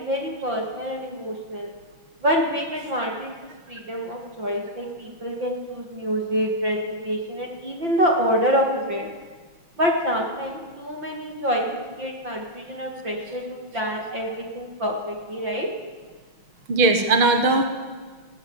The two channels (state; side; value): late; left; 6.2 ms